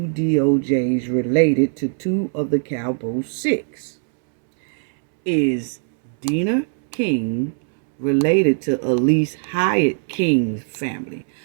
DOJs related to two of the Cowboy Six? Is Dina King related to Elise Hyatt King's family?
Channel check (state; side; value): silent; left; 65 dB below the other